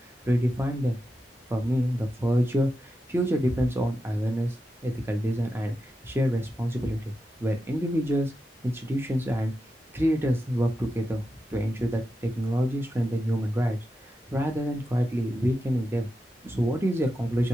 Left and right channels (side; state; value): both; normal; correlation 0.89